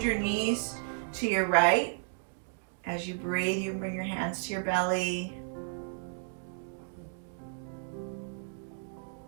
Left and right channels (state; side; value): silent; left; digital silence